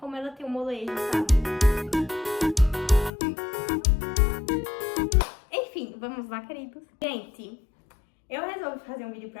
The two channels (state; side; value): drops out; right; at 3.1 s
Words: ela tem um molejo, sabe? Enfim, vamos lá, queridos. Gente, eu resolvi fazer um vídeo